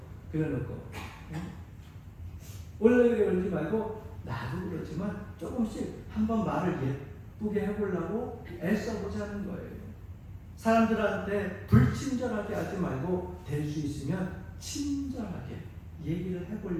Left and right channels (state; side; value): identical; both; correlation 1.00